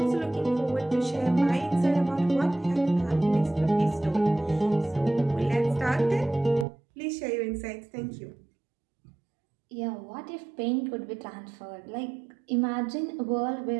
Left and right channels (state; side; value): drops out; left; at 6.7 s